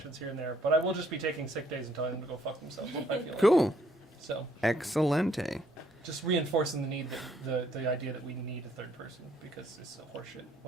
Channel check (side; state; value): both; normal; correlation 0.67